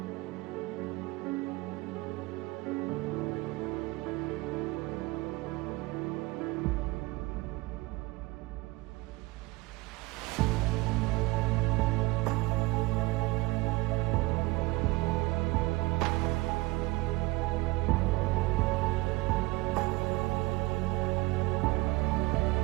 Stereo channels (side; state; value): left; quieter; 22.0 dB